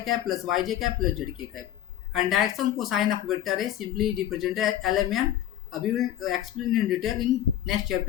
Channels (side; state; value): right; quieter; 12.0 dB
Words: cap plus yj cap plus zk cap. And direction cosine of vector A simply represented as lmn. We will explain in detail in next